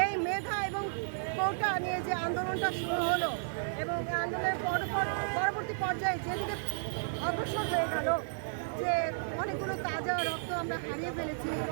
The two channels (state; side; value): silent; left; 56 dB below the other